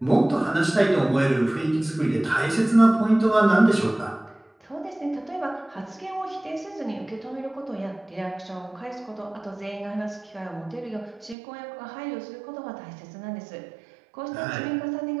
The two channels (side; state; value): left; drops out; at 11.4 s